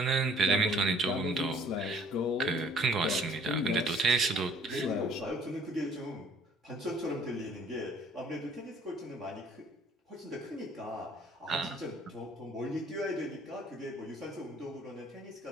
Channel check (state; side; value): normal; both; correlation 0.56